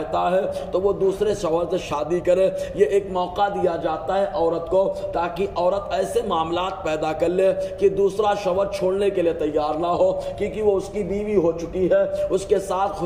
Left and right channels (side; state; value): both; identical; correlation 1.00